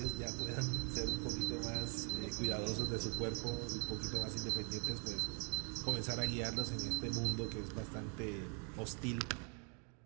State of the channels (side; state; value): left; quieter; 39.0 dB